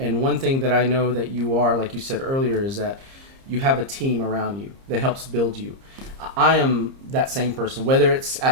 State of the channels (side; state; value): left; late; 30 ms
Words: one thing that I know that you are, like you said earlier, is that you have a team around you that helps build you. I am that same person, whether it's